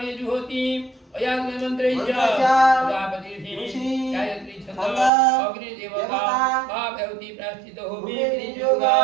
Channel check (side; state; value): left; drops out; at 5.1 s